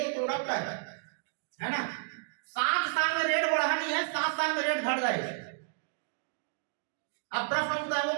प्रोडक्ट है ना, 7 साल में रेट बढ़ा नहीं है, 7 साल में रेट घट गए। अब प्रश्न उठता है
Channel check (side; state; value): left; silent; digital silence